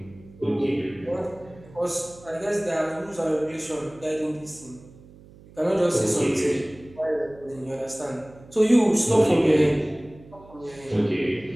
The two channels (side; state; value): right; noise; hum, 22 dB below the sound